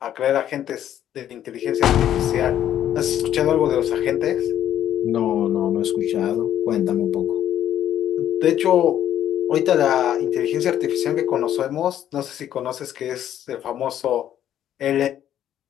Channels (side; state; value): right; quieter; 11.0 dB